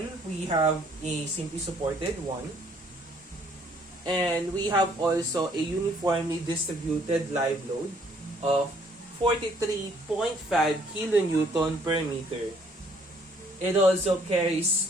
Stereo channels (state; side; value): normal; both; correlation 0.63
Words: we have a simply supported one. And we have also a uniformly distributed live load of 43.5 kilonewton per meter. It also carries